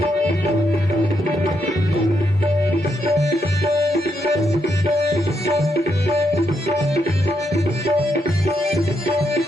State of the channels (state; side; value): normal; both; correlation 0.80